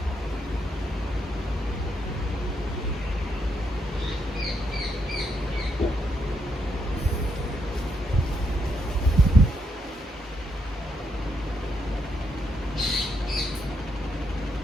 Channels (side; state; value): both; normal; correlation 0.78